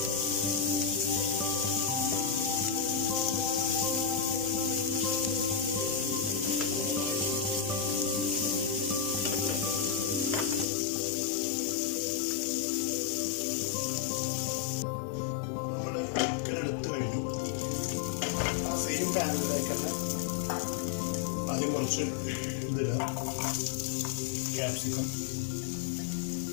നമ്മൾ ചിക്കൻ എടുത്തു കഴിഞ്ഞു. ആ സെയിം പാനിലേക്ക് തന്നെ ആദ്യം കുറച്ച് ഇതിടുക, ക്യാപ്സിക്കം.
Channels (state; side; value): drops out; right; at 10.7 s